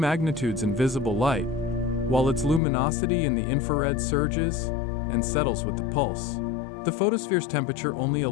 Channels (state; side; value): drops out; right; at 2.6 s